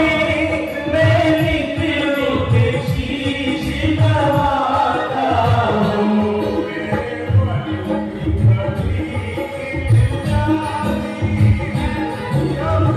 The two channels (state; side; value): identical; both; correlation 1.00